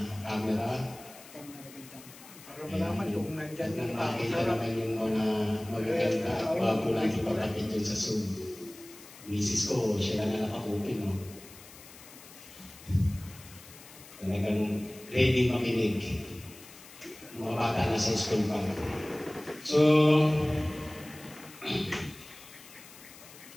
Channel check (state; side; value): noise; left; hiss, 19 dB below the sound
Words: camera. Para malaman kung nandyan At yung makita naman yung mga magaganda at bago lang ipagkapit dyan sa Zoom. Misis ko, siya lang na naka-open, no? Talagang ready makinig. Mga bata na sa school pa. So,